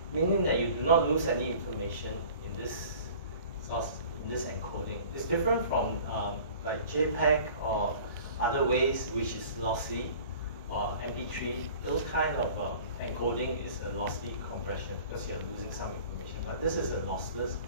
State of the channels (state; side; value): inverted; both; correlation -0.45